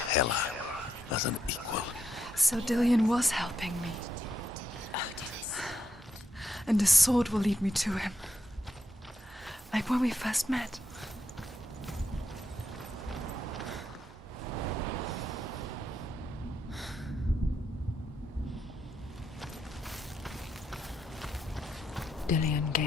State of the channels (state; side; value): normal; both; correlation 0.80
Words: as an equal. So Dillian was helping me. And the sword will lead me to him. Like when we first met. Dillian